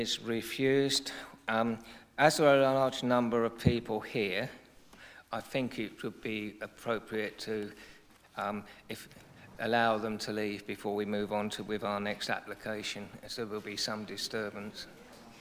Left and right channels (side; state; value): both; identical; correlation 1.00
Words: refused. As there are a large number of people here, I think it would be appropriate to allow them to leave before we move on with our next application, as there will be some disturbance.